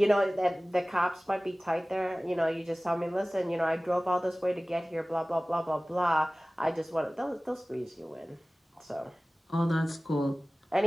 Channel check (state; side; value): normal; both; correlation 0.98